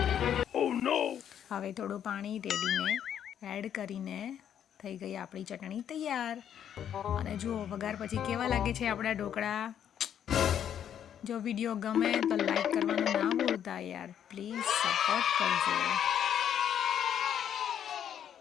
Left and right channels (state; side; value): quieter; right; 9.4 dB